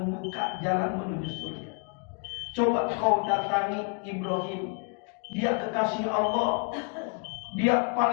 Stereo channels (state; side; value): quieter; right; 38.2 dB